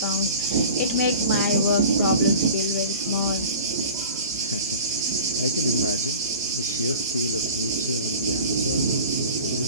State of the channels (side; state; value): both; inverted; correlation -0.39